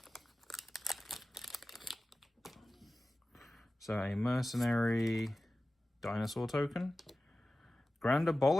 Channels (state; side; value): normal; both; correlation 0.95